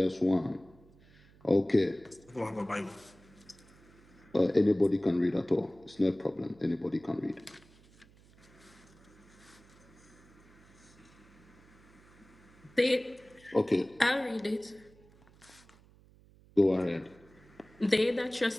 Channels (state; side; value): noise; right; hum, 26 dB below the sound